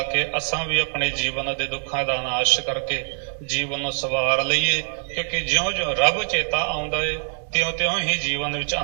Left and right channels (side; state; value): left; silent; 59 dB below the other